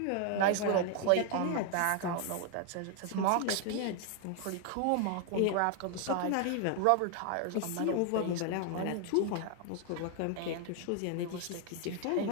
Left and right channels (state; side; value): different; both; correlation 0.00